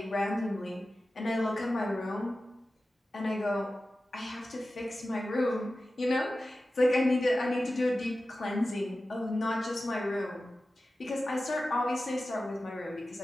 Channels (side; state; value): both; normal; correlation 0.94